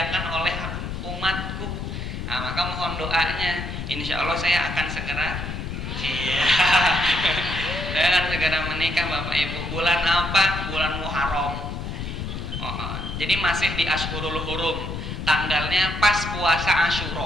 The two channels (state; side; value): noise; left; rumble, 6 dB below the sound